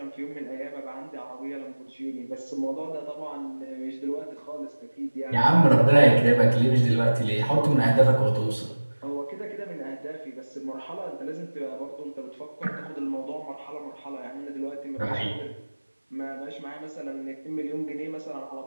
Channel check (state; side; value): inverted; both; correlation -1.00